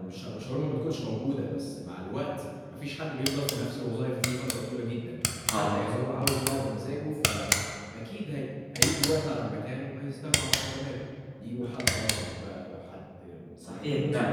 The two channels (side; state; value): both; identical; correlation 1.00